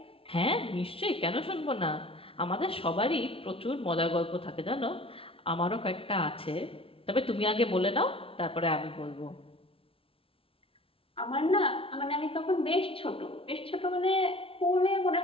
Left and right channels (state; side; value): late; right; 0.26 ms